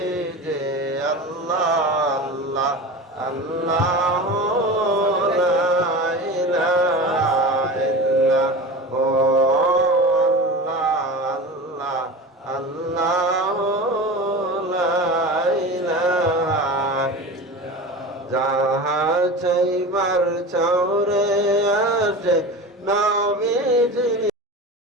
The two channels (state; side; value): normal; both; correlation 0.31